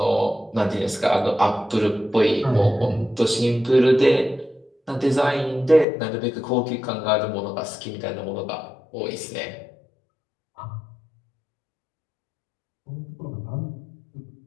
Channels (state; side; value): drops out; right; at 5.9 s